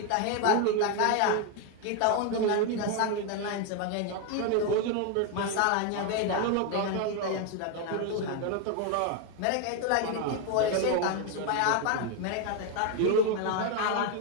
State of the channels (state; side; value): different; both; correlation 0.01